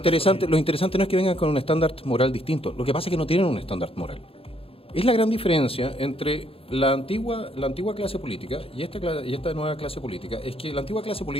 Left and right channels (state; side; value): late; right; 0.27 ms